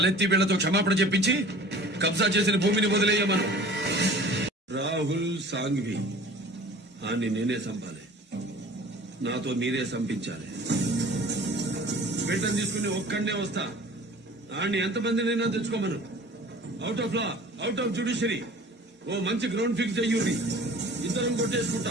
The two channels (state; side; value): normal; both; correlation 0.45